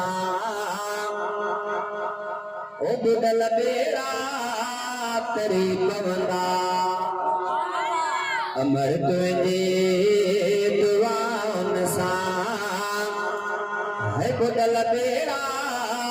ओ बुदल बेड़ा तेरी पवंदा अमर तुझे दुआन सा है बुदल बेड़ा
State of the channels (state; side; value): identical; both; correlation 1.00